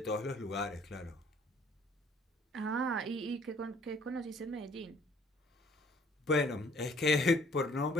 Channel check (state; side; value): normal; both; correlation 0.58